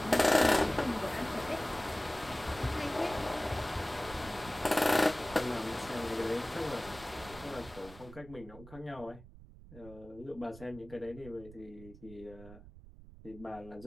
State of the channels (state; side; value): noise; right; rumble, 18 dB below the sound